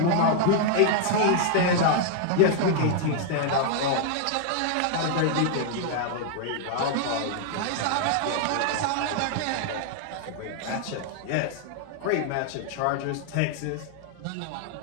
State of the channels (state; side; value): different; both; correlation 0.00